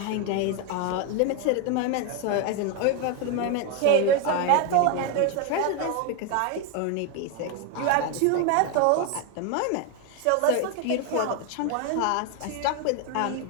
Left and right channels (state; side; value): different; both; correlation 0.01